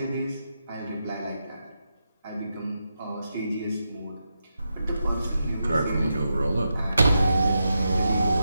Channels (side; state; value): both; inverted; correlation -0.86